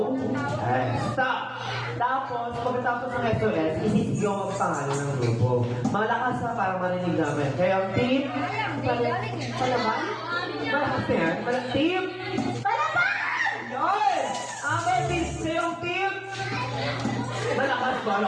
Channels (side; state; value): both; identical; correlation 1.00